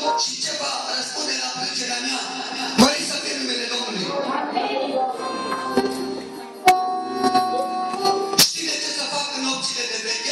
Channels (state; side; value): identical; both; correlation 1.00